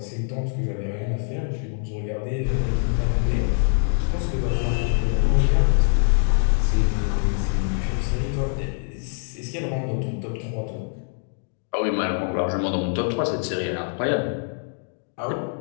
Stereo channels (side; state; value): right; silent; 63 dB below the other